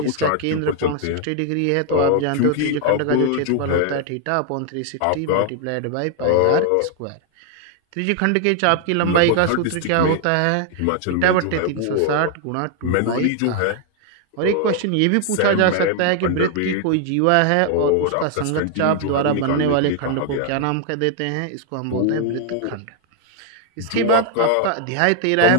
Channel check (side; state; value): both; different; correlation 0.00